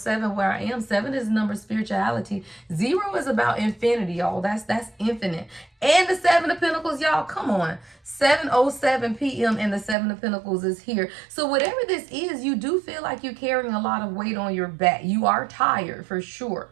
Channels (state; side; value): drops out; left; at 10.0 s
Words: where I am. 7 is the number of spirituality. 0 is about infinity, y'all. That's infinite. And the 7 of Pentacles, y'all, come on. 7:07 p.m. and the 7 of Pentacles is here. So whatever this is, you do feel like you're carrying a lot of weight on your back. You are tired for sure.